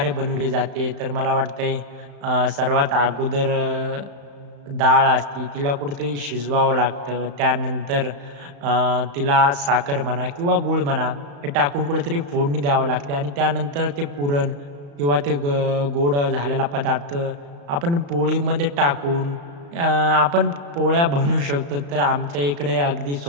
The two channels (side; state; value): left; late; 35 ms